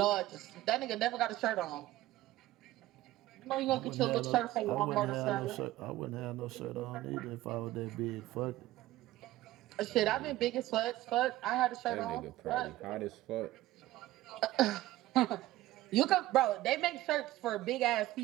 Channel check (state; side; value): quieter; left; 16.1 dB